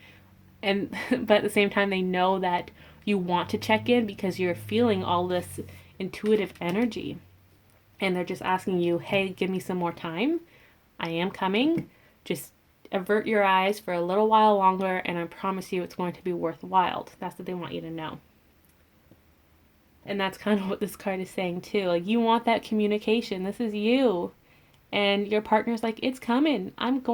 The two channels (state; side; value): identical; both; correlation 1.00